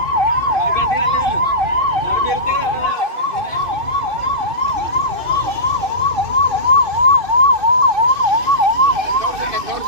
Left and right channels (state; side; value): late; left; 2.5 ms